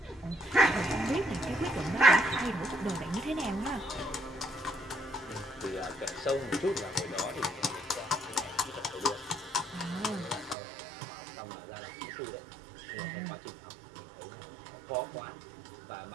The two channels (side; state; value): left; drops out; at 10.6 s